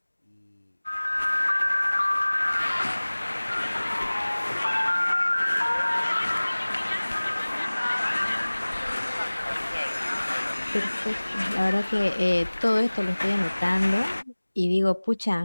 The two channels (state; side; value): inverted; both; correlation -1.00